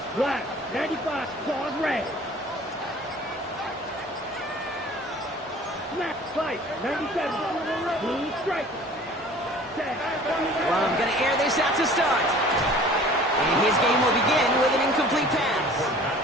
Black, 95, claws red. Snap, fight, 97, blue striker. Well, I'm going to air this out to start. And his game will begin with an incomplete pass.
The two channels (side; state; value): both; normal; correlation 0.47